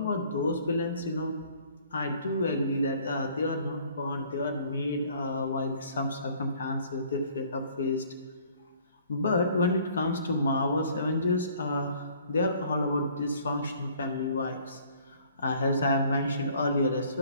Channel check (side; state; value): both; inverted; correlation -0.57